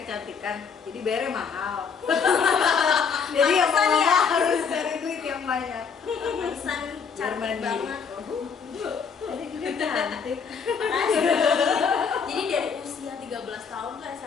kecantikan, jadi bayarnya mahal. Jadi yang Pantesan mau ya. harus cari duit yang banyak. Pesan Biar cantik mandiri. banget. Jadi juga cantik. Makasih. Jadi dari usia 13 tahun tuh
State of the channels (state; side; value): quieter; right; 6.2 dB